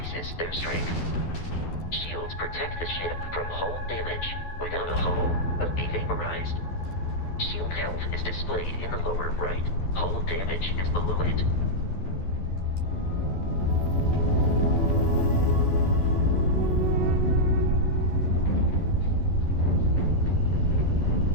strength. Shields protect the ship from hull damage. Without a hull, be vaporized. Shield health is displayed in the lower right. Hull damage is below it.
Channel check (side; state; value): right; late; 12 ms